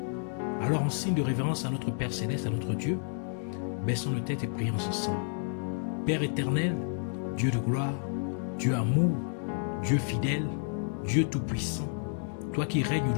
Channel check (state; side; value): silent; right; digital silence